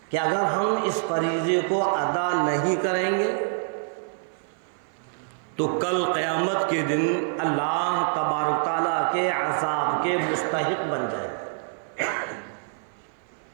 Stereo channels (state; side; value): silent; left; 56 dB below the other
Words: کہ اگر ہم اس فریضے کو ادا نہیں کریں گے تو کل قیامت کے دن اللہ تبارک تعالیٰ کے عذاب کے مستحق بن جائیں.